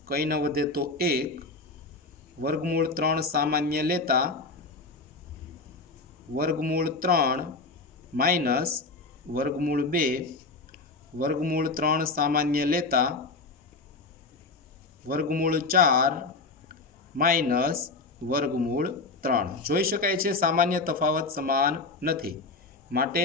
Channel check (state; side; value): quieter; right; 3.7 dB